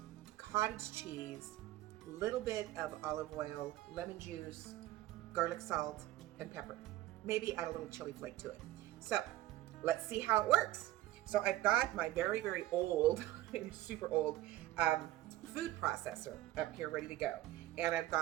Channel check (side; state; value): left; quieter; 15.5 dB